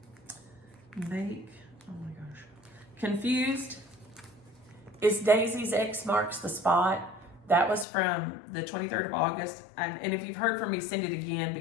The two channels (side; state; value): right; drops out; at 7.9 s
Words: Oh my gosh. Confused. Is Daisy's X marks the spot? That was from the 23rd of August. And if you've heard from me, send it again